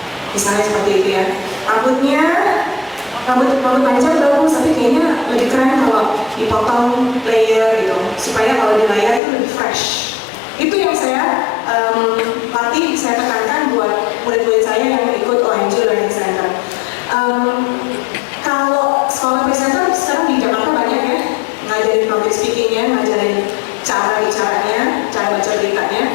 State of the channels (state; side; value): drops out; right; at 9.2 s